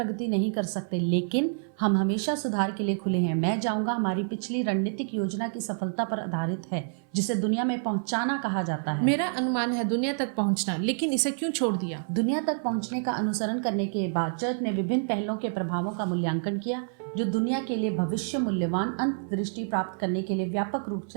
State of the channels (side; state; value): left; silent; 59 dB below the other